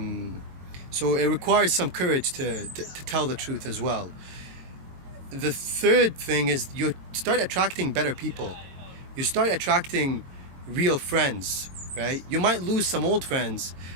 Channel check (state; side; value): late; left; 22 ms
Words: So it requires some courage to tell the truth as well. The third thing is you start attracting better people. You start attracting real friends, right? You might lose some old friends,